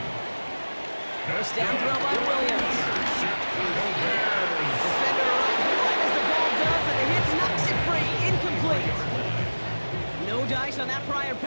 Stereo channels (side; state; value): both; inverted; correlation -1.00